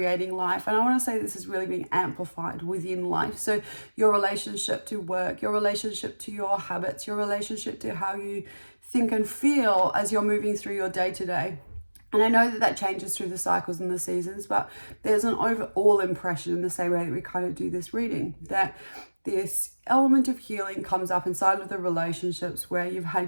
life. And I want to say this is really being amplified within life. So your relationship to work, your relationship to your habits, your relationship to how you think and feel as you're moving through your day-to-day. And I know that changes through the cycles and the seasons, but there's an overall impression in the same way that we kind of do this reading, that this element of healing comes up inside of the relationships where you've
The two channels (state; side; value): inverted; both; correlation -1.00